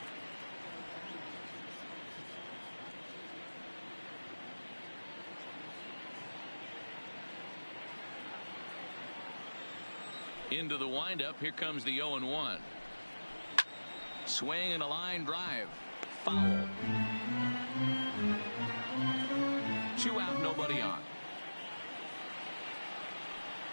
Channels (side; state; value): both; inverted; correlation -1.00